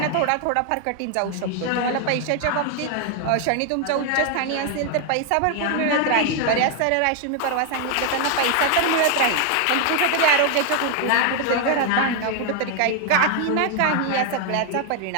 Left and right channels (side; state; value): both; different; correlation 0.01